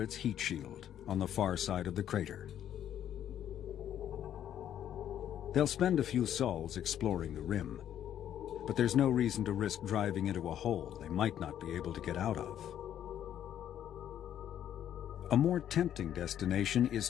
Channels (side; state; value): right; quieter; 10.5 dB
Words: heat shield on the far side of the crater. They'll spend a few sols exploring the rim, but there's no reason to risk driving into a hole they might not be able to get out of. A more tempting destination